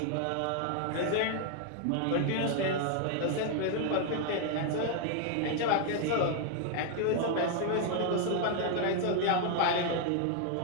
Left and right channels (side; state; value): both; different; correlation 0.00